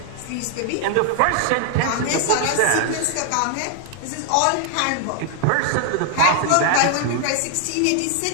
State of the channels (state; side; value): different; both; correlation 0.00